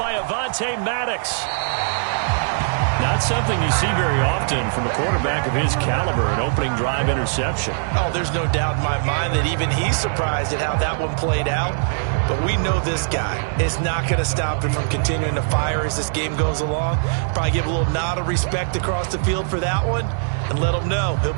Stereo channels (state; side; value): silent; left; digital silence